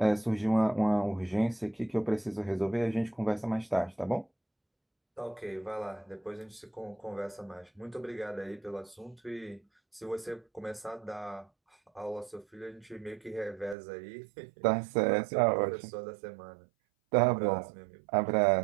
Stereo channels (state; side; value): drops out; left; at 13.8 s